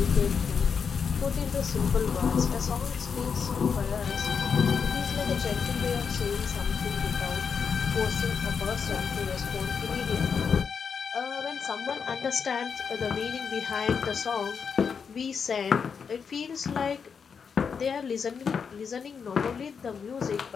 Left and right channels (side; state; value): right; quieter; 6.2 dB